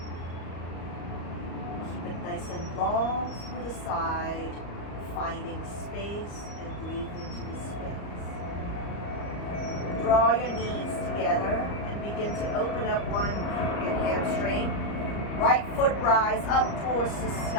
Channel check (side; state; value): right; late; 34 ms